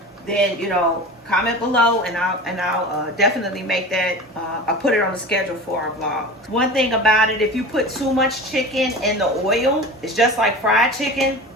then, you know, comment below and I'll definitely make that. I'll put it on the schedule for our vlog. One thing about it, if you put too much chicken in the oil, it's just like fried chicken.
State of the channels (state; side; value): normal; both; correlation 0.33